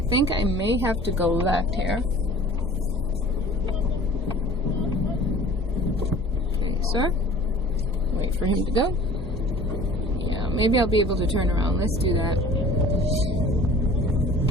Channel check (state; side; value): normal; both; correlation 0.45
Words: think I may have to go left here. Okay, sir. Wait for him to go. Yeah, maybe I'll be able to turn around. Let's do that.